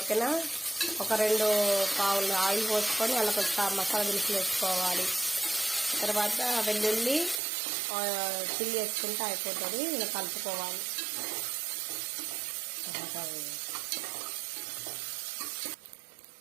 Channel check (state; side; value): drops out; left; at 7.4 s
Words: ఒక 2 పావులు ఆయిల్ పోసుకొని అలా కొంచెం మసాలా దినుసులు వేసుకోవాలి. తర్వాత వెల్లుల్లి చిల్లి వేసుకుంటే అయిపోతుంది. ఇలా కలుపుకోవాలి.